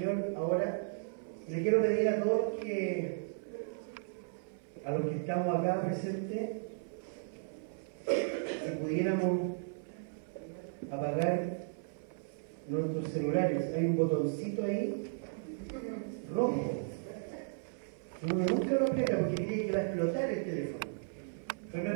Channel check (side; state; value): left; silent; 54 dB below the other